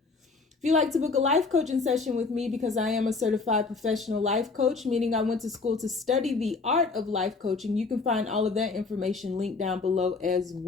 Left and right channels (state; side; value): quieter; right; 4.2 dB